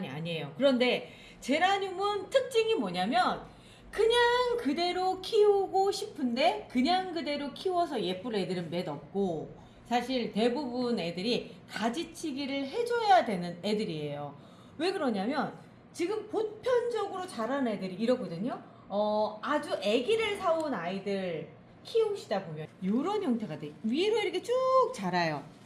아니에요. 그런데 제라늄은 특징이 뭐냐면 그냥 그대로 키우고 싶은데 그냥 그대로 키워서 예쁠 애들은 몇 없고, 사실 대부분 애들이 가지치기를 해줘야 되는 애들이에요. 왜 그러냐면 지금 보편적으로 자란 애들이 이러거든요. 아주 아기를 사온 아이들 키우시다 보면 이런 형태가 돼. 위로 이렇게 쭉 자라요.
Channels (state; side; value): identical; both; correlation 1.00